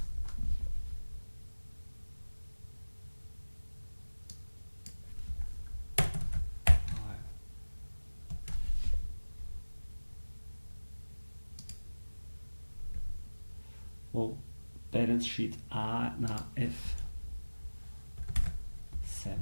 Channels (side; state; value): both; inverted; correlation -1.00